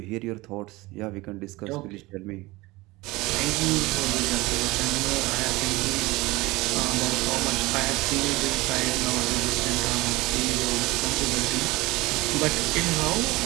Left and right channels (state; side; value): quieter; left; 21.2 dB